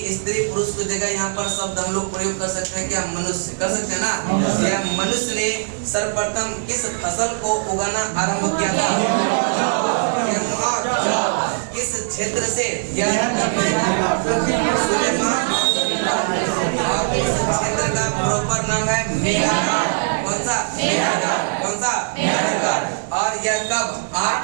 स्त्री पुरुष की जगह यहाँ पर शब्द हम लोग प्रयोग कर सकते हैं, क्या? मनुष्य, कर सकते हैं ना? यह मनुष्य ने सर्वप्रथम किस फसल को उगाना आरंभ किया था? किस क्षेत्र से? यह सुलेमान, और इस क्षेत्र का प्रॉपर नाम है मेहरगढ़। कौन सा? मेहरगढ़, कौन सा? मेहरगढ़। और यह कब?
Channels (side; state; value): left; silent; 64 dB below the other